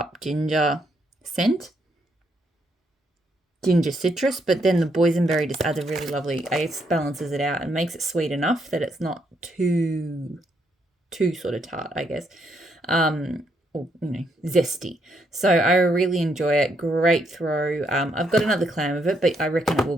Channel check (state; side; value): normal; both; correlation 0.75